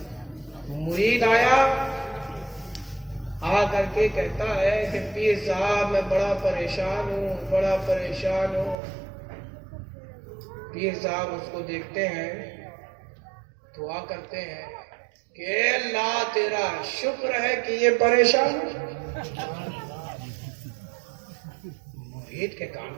مرید آیا، آ کر کے کہتا ہے کہ پیر صاحب میں بڑا پریشان ہوں، بڑا پریشان ہوں۔ پیر صاحب اس کو دیکھتے ہیں، دعا کرتے ہیں کہ اے اللہ تیرا شکر ہے کہ یہ پریشان ہے۔ مرید کے کان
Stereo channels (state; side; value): drops out; left; at 8.8 s